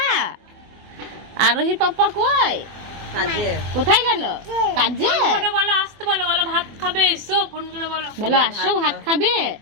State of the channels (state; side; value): late; left; 24 ms